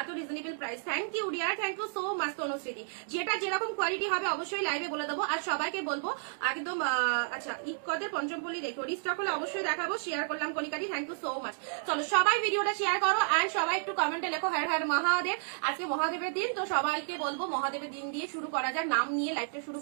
এত reasonable price. Thank you dear, thank you so much Tanushree. যেটা যেরকম কোয়ালিটি হবে অবশ্যই লাইভে বলে দেবো। আর সবাইকে বলবো একদম আচ্ছা ইকদের পঞ্চমপল্লী দেখো, রিস্টক হলে অবশ্যই দেখাবো। শেয়ার করলাম কনিকাটি, থ্যাংক ইউ সো মাচ। চলো সবাই ভিডিওটা শেয়ার করো। অ্যান্ড সবাই একটু কমেন্টে লেখো হর হর মহাদেব। আজকে মহাদেবের দিন, তো সবাইকে বলবো মহাদেবের দিন দিয়ে শুরু করা যাক, নাম নিয়ে লাইভটা শুরু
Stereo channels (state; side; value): silent; left; digital silence